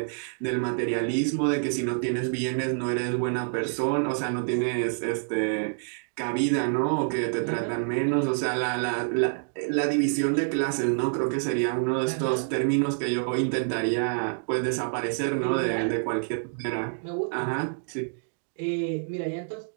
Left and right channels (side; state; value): left; silent; digital silence